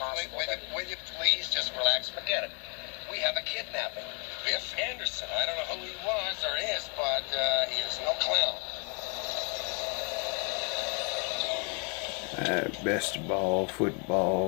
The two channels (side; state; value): right; quieter; 36.8 dB